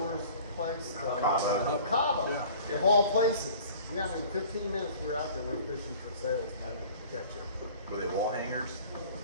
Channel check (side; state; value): both; inverted; correlation -0.47